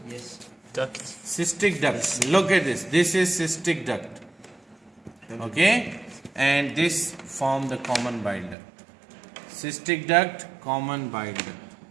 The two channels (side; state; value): left; drops out; at 8.6 s